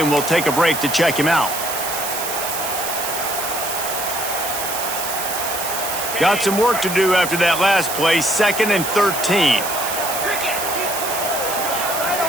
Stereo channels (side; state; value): right; noise; hiss, 5 dB below the sound